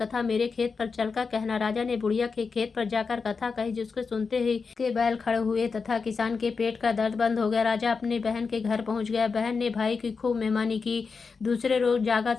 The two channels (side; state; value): right; quieter; 5.0 dB